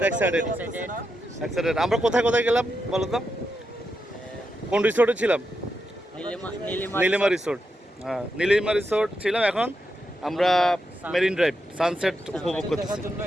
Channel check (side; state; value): both; normal; correlation 0.85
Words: এক্সাইটেড এক্সাইটেড। আমরা কোথায় কোথায় গেলাম বলো তো? কোন রিসোর্টে ছিলাম? নীলিমা রিসোর্ট। হ্যাঁ, নীলিমা রিসোর্ট ছিলাম। এখন আমরা মেরিন ড্রাইভ সানসেট উপভোগ করতেছি।